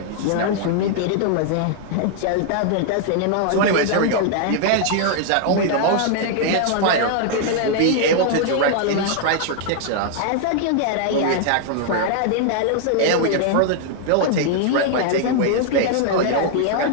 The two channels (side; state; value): both; different; correlation 0.00